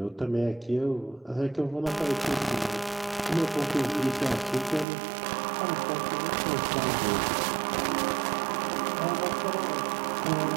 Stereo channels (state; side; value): drops out; left; at 4.9 s